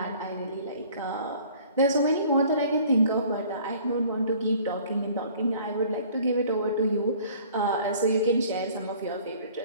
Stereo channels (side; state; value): both; inverted; correlation -0.52